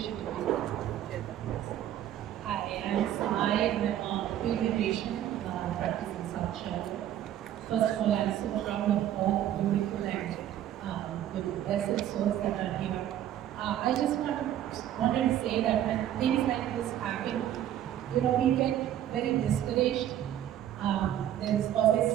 to be. Hi, I'm Sai. I'm a pediatrician practicing South Shore. First of all, I'm so proud of all the beautiful and the blessed souls that are here. I just wanted to say that when things like this happen, we get very discouraged. There's always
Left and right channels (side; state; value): left; quieter; 11.6 dB